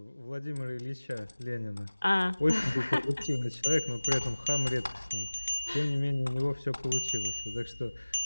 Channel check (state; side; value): inverted; both; correlation -1.00